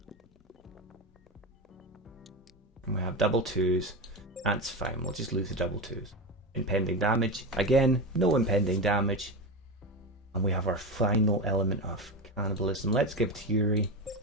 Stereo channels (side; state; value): both; normal; correlation 0.19